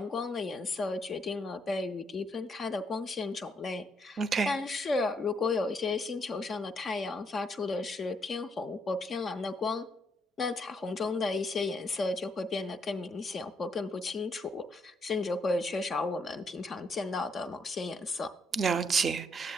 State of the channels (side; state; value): both; normal; correlation 0.74